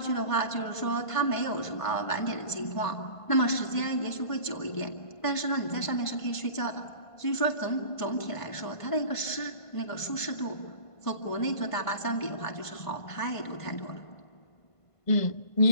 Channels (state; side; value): late; right; 1.5 ms